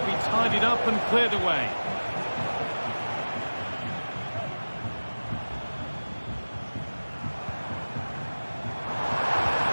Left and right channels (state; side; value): inverted; both; correlation -1.00